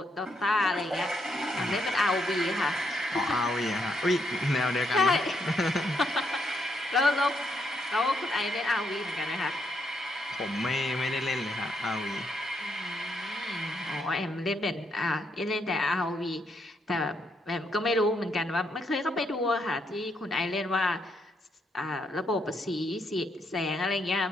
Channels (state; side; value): normal; both; correlation 0.77